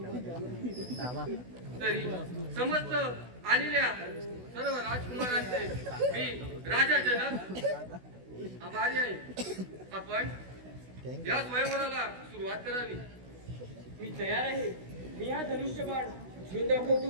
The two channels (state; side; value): late; left; 16 ms